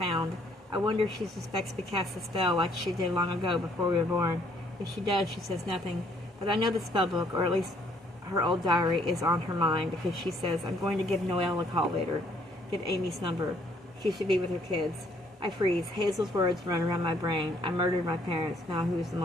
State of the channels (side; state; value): both; normal; correlation 0.65